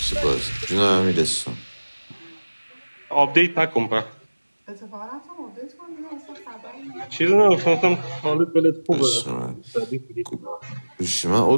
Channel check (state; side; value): inverted; both; correlation -1.00